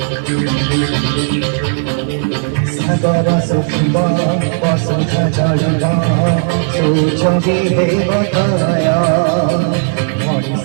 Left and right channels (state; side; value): silent; left; 67 dB below the other